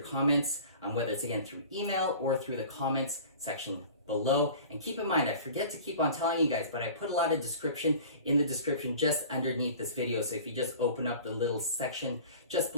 whether it's again through email or through the comments section below. And keep in mind, I forget to keep on telling you guys, but I put a lot of description in the description just underneath this video. So if you just open up the little section just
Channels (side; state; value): both; inverted; correlation -0.42